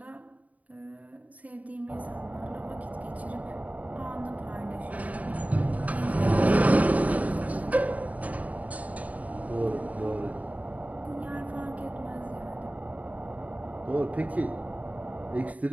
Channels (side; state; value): left; late; 0.071 ms